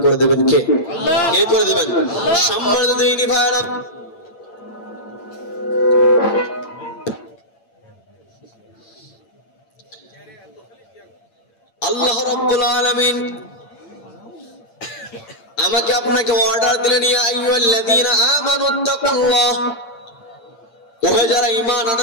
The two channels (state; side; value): late; right; 8.7 ms